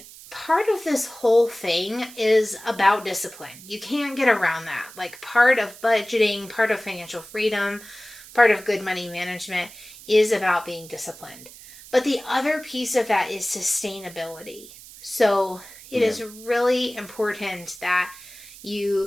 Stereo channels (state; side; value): noise; right; hiss, 18 dB below the sound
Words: part of this whole thing is about discipline. You can't get around that. Like, part of budgeting, part of financial freedom, part of good money management is about being disciplined. But the other piece of that is sustainability. So it is really important that